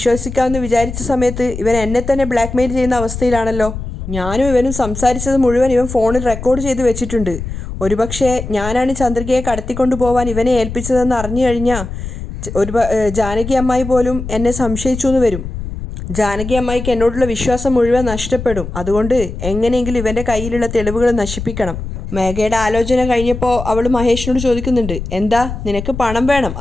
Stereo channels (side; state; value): left; noise; rumble, 8 dB below the sound